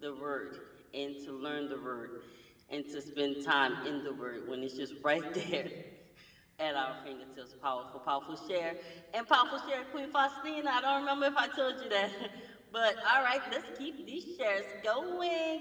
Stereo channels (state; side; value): identical; both; correlation 1.00